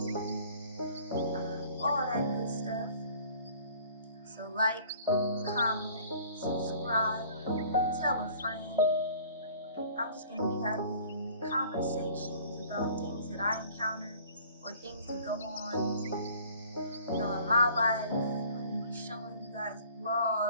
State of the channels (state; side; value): inverted; both; correlation -0.51